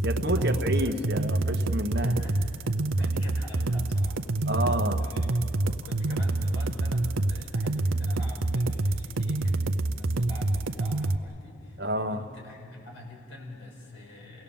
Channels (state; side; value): normal; both; correlation 0.72